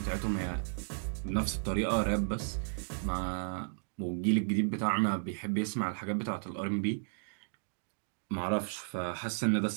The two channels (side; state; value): left; silent; digital silence